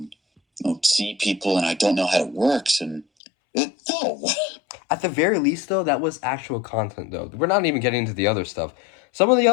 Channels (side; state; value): right; drops out; at 3.1 s